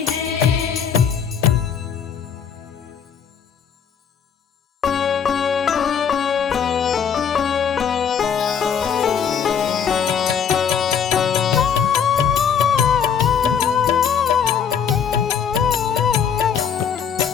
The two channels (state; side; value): quieter; right; 7.4 dB